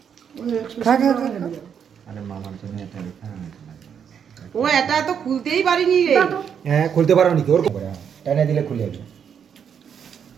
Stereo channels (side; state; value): left; quieter; 7.7 dB